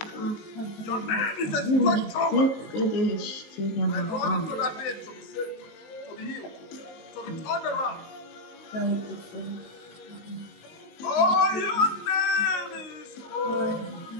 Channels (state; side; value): late; right; 19 ms